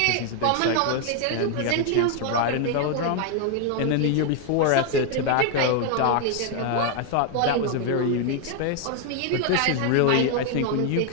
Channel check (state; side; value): different; both; correlation 0.01